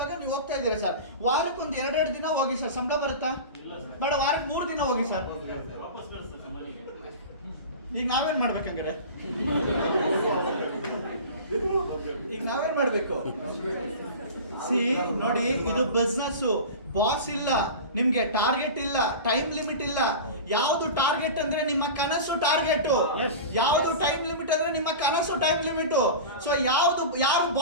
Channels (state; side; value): inverted; both; correlation -0.31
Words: ನೀವು ಹೋಗ್ತಾ ಇದ್ದೀರಾ ಸರ್, ವಾರಕ್ಕೆ ಒಂದು 2 ದಿನ ಹೋಗಿ ಸರ್, ಸಂಬಳ ಬರುತ್ತಾ? ಬೇಡ, ವಾರಕ್ಕೆ 3 ದಿನ ಹೋಗಿ ಸರ್. ಈಗ ನಾವೇನ್ ಮಾಡ್ಬೇಕಂಗಾರೆ? ಈಗ ನಾವೇನ್ ಮಾಡ್ಬೇಕು? ನೋಡಿ, ಇದು ಬಿಸ್ನೆಸ್, ಬಾಸ್ ಇಲ್ಲ, ನಿಮ್ಗೆ ಟಾರ್ಗೆಟ್ ಇಲ್ಲ, ಟೈಮ್ ಲಿಮಿಟ್ ಇಲ್ಲ. ಯಾವ್ದು ಟಾರ್ಗೆಟ್ ಅಂದ್ರೆ ನಿಮ್ಮ ಕನಸು ಟಾರ್ಗೆಟ್, ಯಾವ್ದು ಟೈಮ್ ಲಿಮಿಟ್ ಅಂದ್ರೆ ನಿಮ್ಮ ಕನಸು ಟೈಮ್ ಲಿಮಿಟ್. ಸೊ ಯಾರು